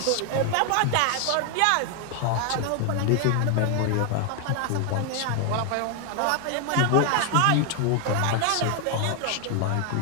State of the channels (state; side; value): different; both; correlation 0.00